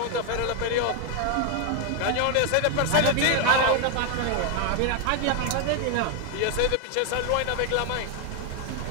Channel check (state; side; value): different; both; correlation 0.01